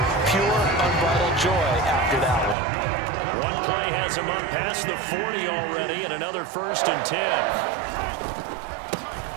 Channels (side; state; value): left; drops out; at 2.6 s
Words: Pure, unbridled joy after that one. One play has him up past the 40 already, and another 1st and 10.